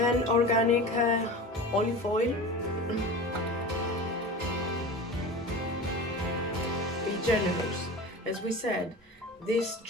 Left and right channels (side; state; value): both; normal; correlation 0.33